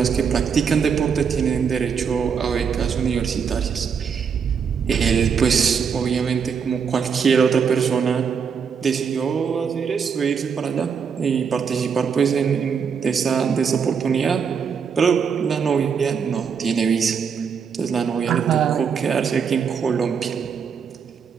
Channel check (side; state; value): left; quieter; 6.5 dB